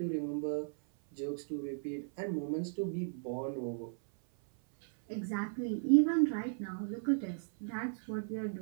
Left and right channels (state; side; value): silent; left; 54 dB below the other